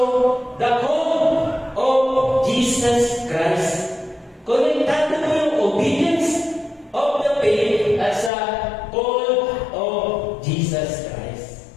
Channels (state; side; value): drops out; right; at 8.3 s